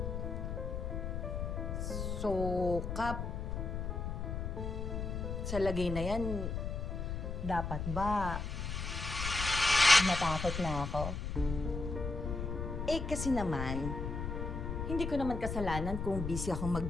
So, Kap, sa lagay na yan, dapat ba matakot na ako? Eh, kasi naman, hindi ko naman kasalanan kung busy akong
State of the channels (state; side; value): noise; left; rumble, 3 dB below the sound